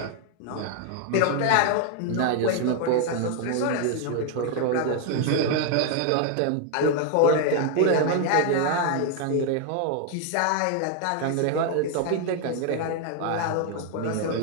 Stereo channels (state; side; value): different; both; correlation 0.00